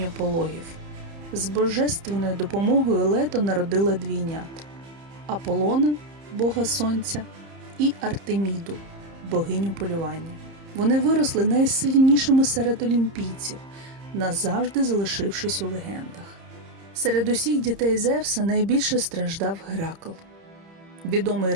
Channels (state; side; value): late; left; 30 ms